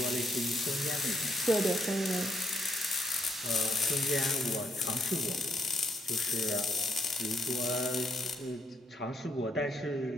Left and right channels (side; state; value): both; normal; correlation 0.75